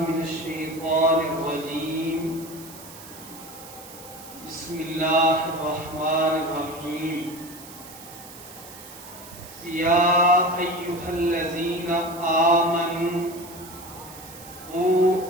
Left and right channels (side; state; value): right; noise; hiss, 17 dB below the sound